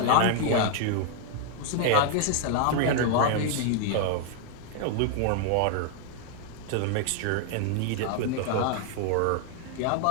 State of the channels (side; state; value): both; different; correlation 0.00